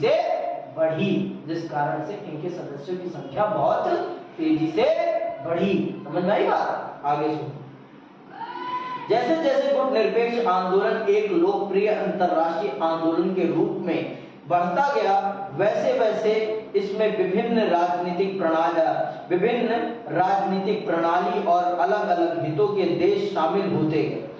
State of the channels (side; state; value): both; identical; correlation 1.00